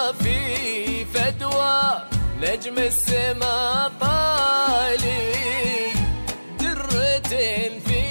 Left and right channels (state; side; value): inverted; both; correlation -1.00